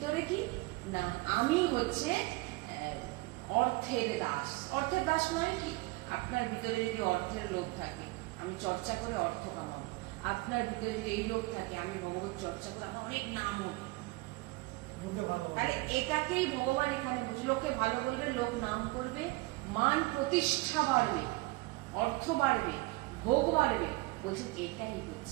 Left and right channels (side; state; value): left; quieter; 22.5 dB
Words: কি না আমি হচ্ছে অর্থের দাস। অর্থের দাস নয় কি, আপনার ভিতরে যদি অর্থের লোভ থাকে আমি চর্চা করে অর্থ কামাবো, আপনার ভিতরে যদি এই লোভ থাকে আমি ভগবত চর্চা করে আমার অনেক নাম হবে, তাহলে এটাকেই ভগবান এখানে বুঝে লোককে ভালো বলবে, লোক নাম করবে, মান প্রতিষ্ঠা বাড়বে, অর্থ বাড়বে, ভোগ বাড়বে, বলছেন এটাই